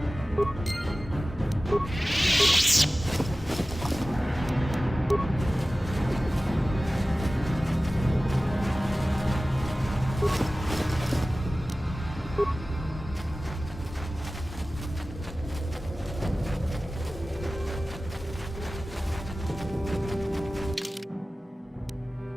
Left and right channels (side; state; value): both; normal; correlation 0.96